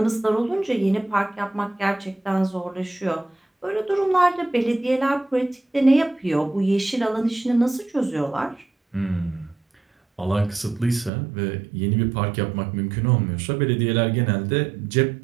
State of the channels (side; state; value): left; drops out; at 11.1 s